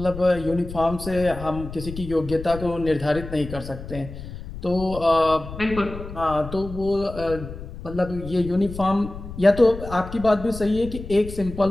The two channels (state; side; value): noise; left; rumble, 11 dB below the sound